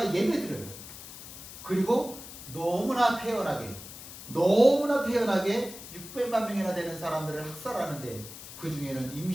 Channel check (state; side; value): noise; left; hiss, 13 dB below the sound